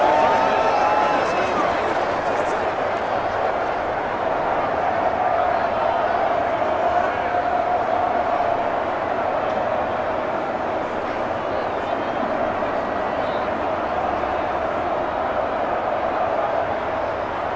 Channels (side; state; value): both; identical; correlation 1.00